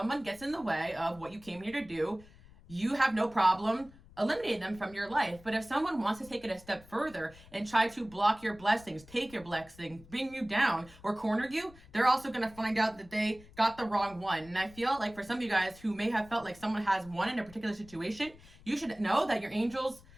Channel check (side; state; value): left; noise; rumble, 22 dB below the sound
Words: gets in the way of what you came here to do, you have no problem eliminating them from your life. But if someone wants to take it a step further and try to block your blessings, take your blessing, bring you down, or corner you, they're also going to find out that they got the wrong one. And I feel like for some of you guys who may have felt like someone has won in a particular situation, you should know that your angels